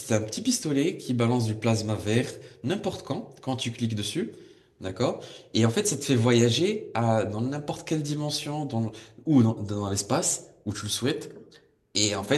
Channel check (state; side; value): identical; both; correlation 1.00